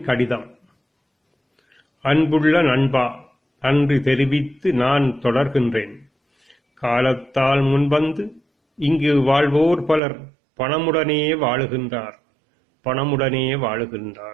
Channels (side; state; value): left; drops out; at 10.0 s